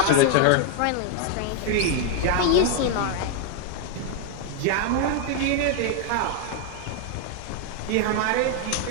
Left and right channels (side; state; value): both; different; correlation 0.00